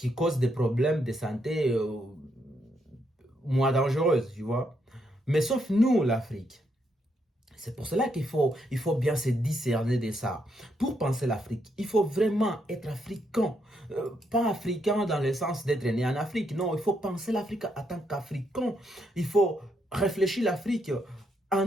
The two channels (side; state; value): both; normal; correlation 0.77